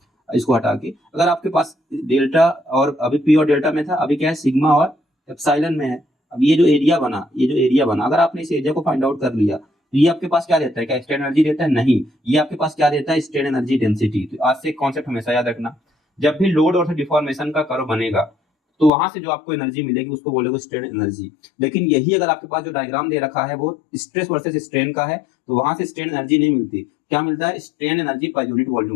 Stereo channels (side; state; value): right; drops out; at 18.9 s